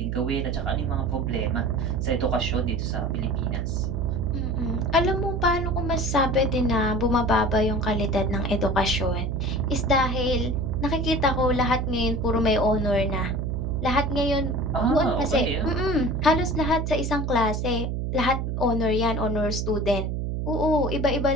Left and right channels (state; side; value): noise; right; hum, 1 dB below the sound